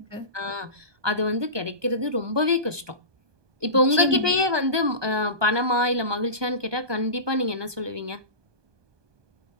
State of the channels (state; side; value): late; left; 1.2 ms